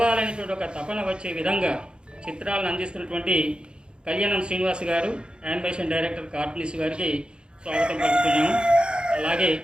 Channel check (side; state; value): left; late; 0.052 ms